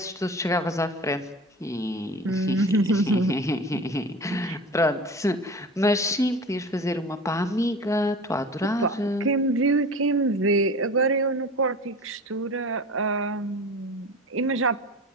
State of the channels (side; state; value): both; normal; correlation 0.35